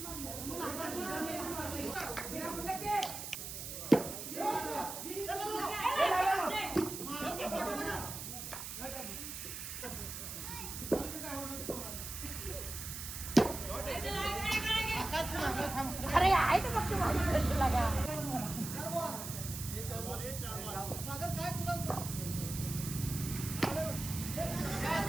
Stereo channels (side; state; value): right; noise; hiss, 7 dB below the sound